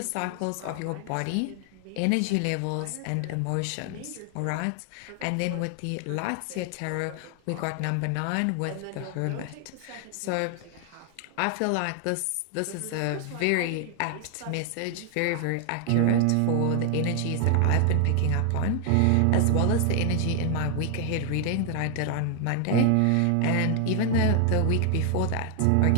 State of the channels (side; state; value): both; different; correlation 0.00